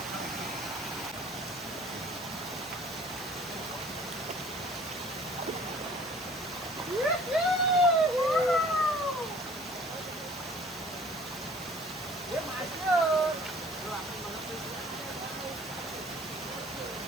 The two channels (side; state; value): both; normal; correlation 0.51